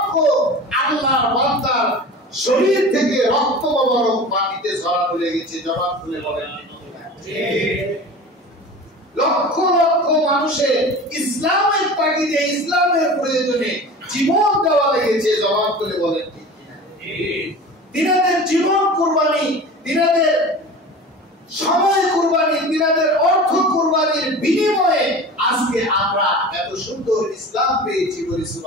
আল্লাহর বান্দার শরীর থেকে রক্ত মোবারক মাটিতে ঝরানো লেগেছে। জবাব খুলে বলেন লক্ষ লক্ষ মানুষের ইসলামের তাগিদে, ইসলামের প্রয়োজনে জীবন দেওয়া লেগেছে। জবাব খুলে বলেন দিনাদের জীবন কুরবানি, দিনাদের সময় কুরবানি, দিনাদের অর্থ কুরবানির বিনিময়ে আজকে আমরা এত সুন্দর ইসলাম পেয়েছি। বলি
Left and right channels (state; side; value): normal; both; correlation 0.36